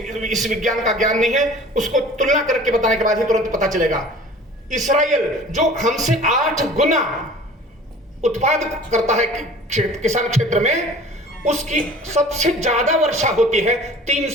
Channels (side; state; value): both; normal; correlation 0.45